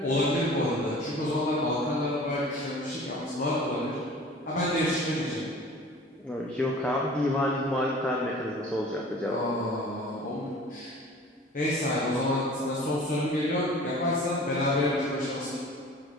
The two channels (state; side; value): normal; both; correlation 0.45